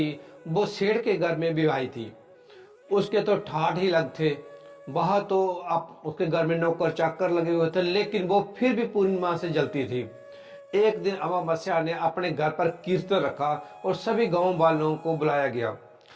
वो सेठ के घर में विवाही थी। उसके तो ठाठ ही लग थे। वह तो आप उसके घर में नौकर चाकर लगे हुए थे, लेकिन वो फिर भी पूर्णिमा से जलती थी। एक दिन अमावस्या ने अपने घर पर कीर्तन रखा और सभी गांव वालों को बुलाया गया,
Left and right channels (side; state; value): both; identical; correlation 1.00